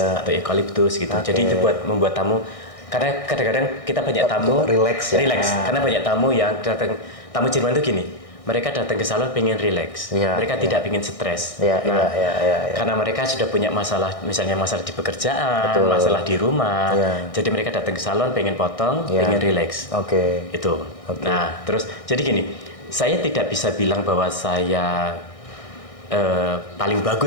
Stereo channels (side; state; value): right; late; 1.6 ms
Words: atau eucalyptus gitu. Oke. Jadi itu buat membuat tamu, karena kadang-kadang kita banyak tamu Relax ya. karena banyak tamu yang datang, tamu Jerman itu gini, mereka datang ke salon pengen relax, Ya, mereka tidak pengen stres. Ya, ya. Karena mereka sudah punya masalah, misalnya masalah di pekerjaan, Betul. masalah di rumah, Ya. jadi mereka datang ke salon pengen potong, Ya. pengen relax. Oke. Itu. Oke. Nah, terus jadi gini, saya tidak bisa bilang bahwa saya paling